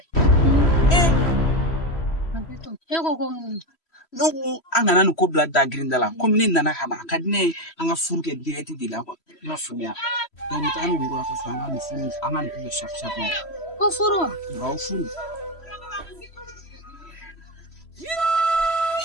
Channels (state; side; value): late; right; 3.1 ms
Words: E ko ko mun? ne ko an kana nin ko bila da girinda la komi ne nana ka na a ka di ne ye an ka furu kɛ direct de la quoi i m'a faamuya donc n taga ni woro a ka so an ka nin furu an ka nin kɛ chaque chaque mois. Ko furu wa? Awɔ furu.